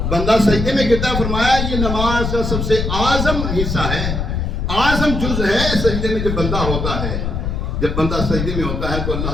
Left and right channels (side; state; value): left; noise; rumble, 2 dB below the sound